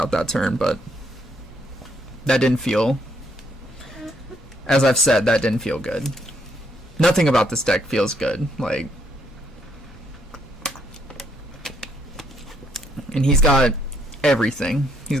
that turn, but that didn't feel... As I've said, that didn't feel good. Nothing about this deck feels good. Like... And he's got everything. He's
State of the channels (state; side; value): normal; both; correlation 0.72